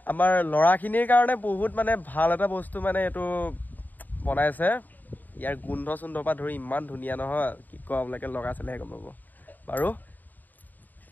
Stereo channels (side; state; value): right; late; 0.086 ms